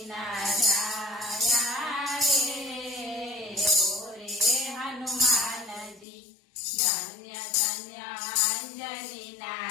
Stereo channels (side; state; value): right; drops out; at 6.1 s